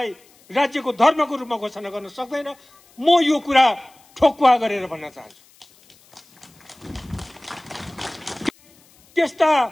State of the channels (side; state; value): left; noise; hiss, 29 dB below the sound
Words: राज्यको धर्मको रूपमा घोषणा गर्न सक्दैन। म यो कुरा ठोक्वा गरेर भन्न चाहन्छु। त्यस्ता